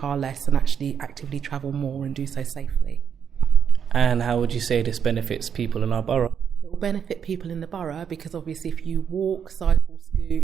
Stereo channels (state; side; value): quieter; left; 7.6 dB